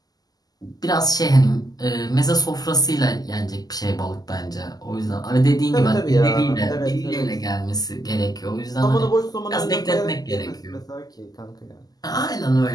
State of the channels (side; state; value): right; late; 0.18 ms